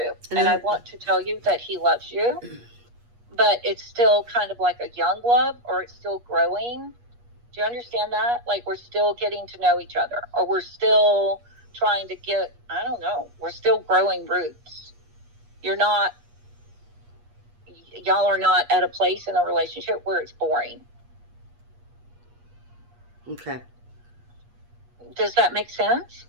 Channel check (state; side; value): late; left; 8.4 ms